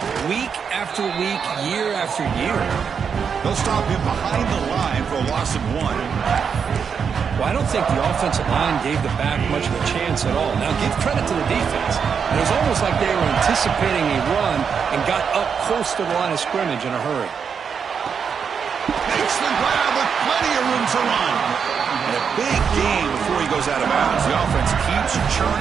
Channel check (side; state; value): left; quieter; 6.6 dB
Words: week after week, year after year. They'll stop him behind the line for a loss of 1. Well, I don't think the offensive line gave the back much of a chance at all. Now, give credit to the defense. It was almost like they were anticipating a run and got up close to the line of scrimmage in a hurry. Makes the grab with plenty of room to run. And a big gain before he goes out of bounds. The offense keeps